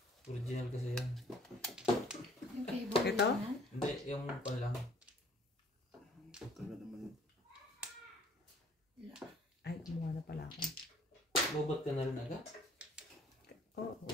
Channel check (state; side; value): normal; both; correlation 0.57